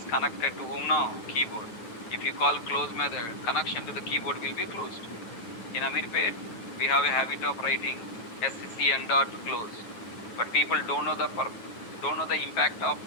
connected to whom now? Keyboard. If you call close method, connection to the keyboard will be closed. In Amirpet, we have a habit of writing SCN dot close. But people don't know the impact of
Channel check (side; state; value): right; late; 10 ms